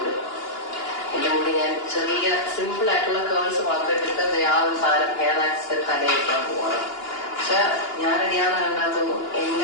എന്റെ മുന്നിൽ ഞാൻ ചെറിയ സിമ്പിൾ ആയിട്ടുള്ള കേൾസ് മാത്രം ഇട്ടിട്ട് ആ ഒരു സാധനം ഹെയർ ആക്സിഡന്റ് തലയിക്കാൻ പോവാണ്. പക്ഷെ ഞാൻ റെഡിയാന്ന് കണ്ടാത്തൊന്നും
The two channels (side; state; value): right; late; 2.9 ms